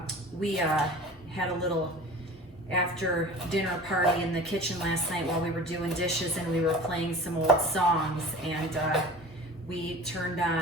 we had a little after dinner party in the kitchen last night while we were doing dishes and we were playing some old songs, and we turned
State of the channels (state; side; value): normal; both; correlation 0.39